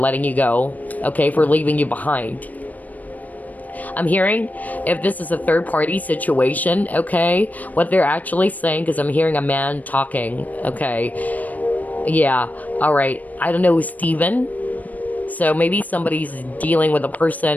you go, okay, for leaving you behind. I'm hearing, if this is a third-party situation, okay, what they're actually saying, because I'm hearing a man talking, okay, yeah, all right, I don't know who's Steven. So maybe somebody's dealing with a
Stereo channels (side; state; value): right; late; 0.077 ms